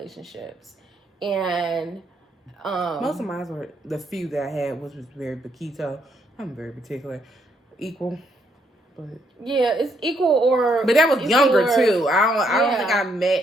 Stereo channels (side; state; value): both; normal; correlation 0.73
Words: and most of mine were the few that I had, which was very Paquito. I'm very particular, equal. But yeah, it's equal or. But that was younger too. I don't think I